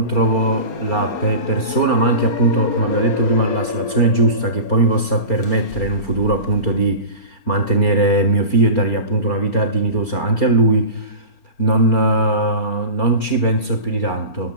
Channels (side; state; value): right; late; 4.4 ms